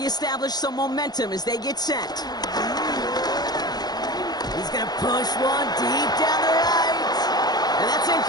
some momentum as they get set. He's going to push one deep down the right. And that's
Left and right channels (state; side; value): late; right; 0.19 ms